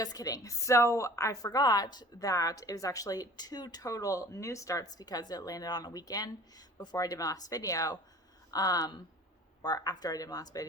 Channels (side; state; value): both; normal; correlation 0.46